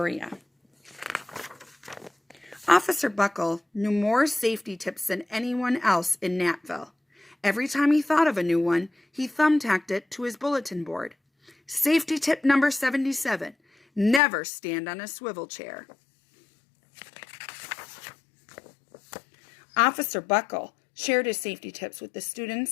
Officer Buckle knew more safety tips than anyone else in Natville. Every time he thought of a new one, he thumbtacked it to his bulletin board. Safety tip number 77, never stand on a swivel chair. Officer Buckle shared his safety tips with the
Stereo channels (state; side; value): drops out; right; at 14.2 s